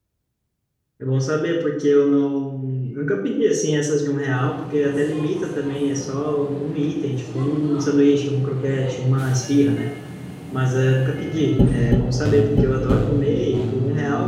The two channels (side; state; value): both; identical; correlation 1.00